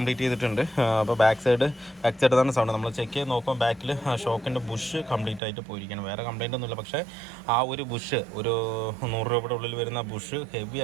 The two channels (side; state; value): left; drops out; at 5.4 s